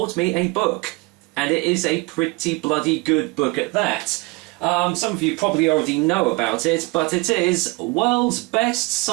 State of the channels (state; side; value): quieter; left; 26.6 dB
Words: me a book, and it is a pretty bloody good book at that. Some of you probably already know about it, but it is World's Best